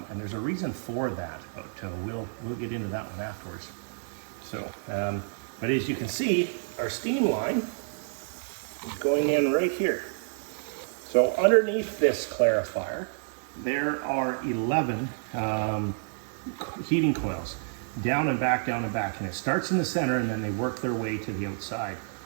there's a reason for that, but we'll get into that one afterwards. So but as you can see, our steam line is going in right here. So underneath this clarifier there are 11 heating coils, down and back, and it starts in the center and then they work their way to the outside.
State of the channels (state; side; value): silent; left; digital silence